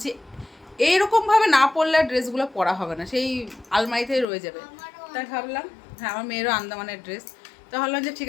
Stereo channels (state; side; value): drops out; right; at 4.2 s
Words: এইরকমভাবে না পরলে আর ড্রেসগুলো পরা হবে না, সেই আলমারিতেই রয়ে যাবে। তাই ভাবলাম হ্যাঁ আমার মেয়েরও আন্দামানের ড্রেস, তো ভাবলাম যে ঠিক